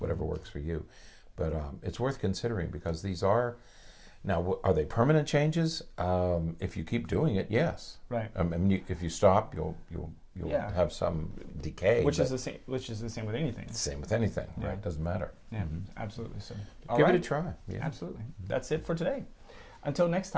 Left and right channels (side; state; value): both; identical; correlation 1.00